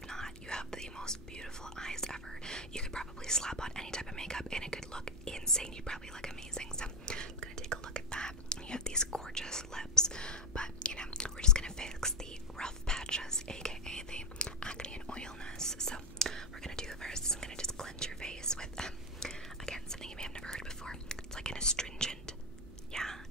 not, you have the most beautiful eyes ever. You could probably slap on any type of makeup, and it could look insane. You'd probably look amazing. So I'm gonna take a look at that. You have these gorgeous lips, but you know, we're just gonna fix the rough patches, aka the acne and oilness. So we're gonna do first, I'm gonna just cleanse your face with again, something you may have never heard before. It's like an astringent. Yeah,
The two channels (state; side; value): normal; both; correlation 0.13